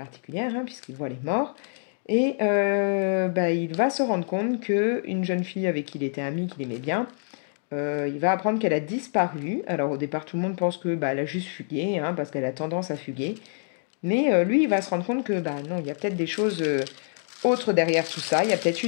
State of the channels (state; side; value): silent; right; digital silence